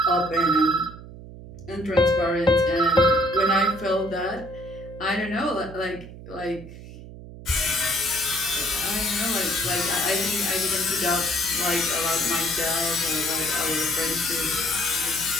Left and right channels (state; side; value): noise; right; hum, 15 dB below the sound